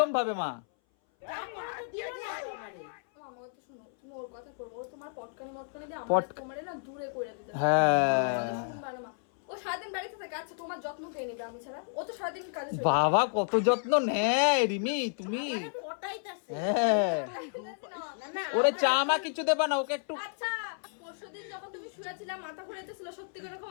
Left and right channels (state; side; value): silent; right; 57 dB below the other